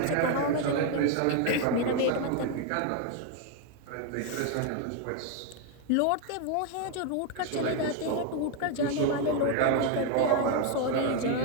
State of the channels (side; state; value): both; different; correlation 0.01